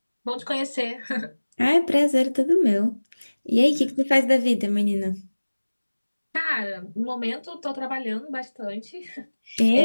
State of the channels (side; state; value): both; inverted; correlation -1.00